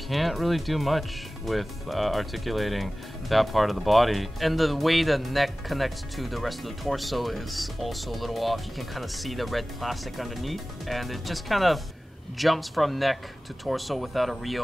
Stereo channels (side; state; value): both; normal; correlation 0.97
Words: really do much with articulating that part of the body. And the way the neck connects to the rest of the torso is also a little off. You can kind of see the red plastic underneath, and it just kind of jumps from neck to torso without a